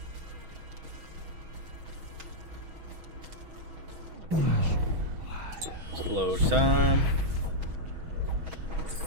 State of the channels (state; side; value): late; left; 6.2 ms